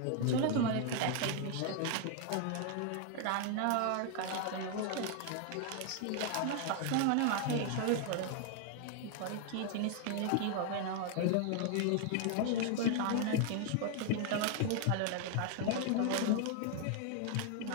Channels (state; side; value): different; both; correlation 0.00